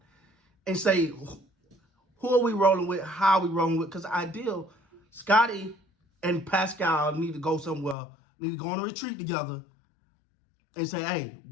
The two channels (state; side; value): drops out; right; at 8.0 s